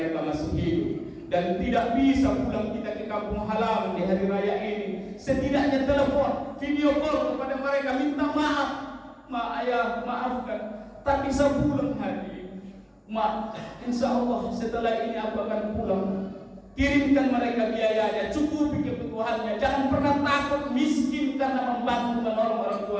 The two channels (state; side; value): identical; both; correlation 1.00